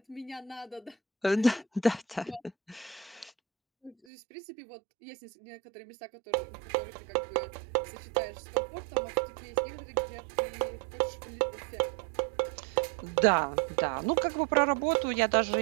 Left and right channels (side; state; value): left; drops out; at 4.0 s